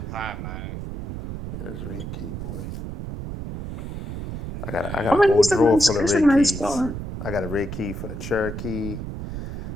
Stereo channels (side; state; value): right; noise; rumble, 7 dB below the sound